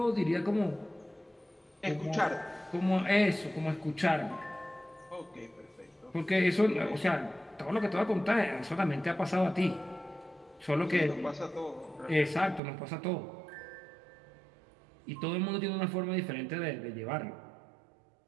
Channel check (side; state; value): left; drops out; at 12.6 s